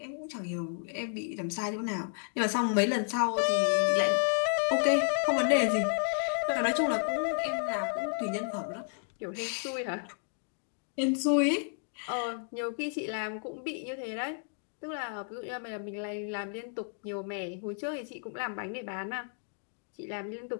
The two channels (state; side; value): silent; right; 56 dB below the other